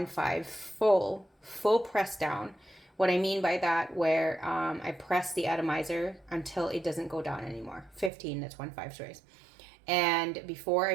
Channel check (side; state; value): left; drops out; at 8.1 s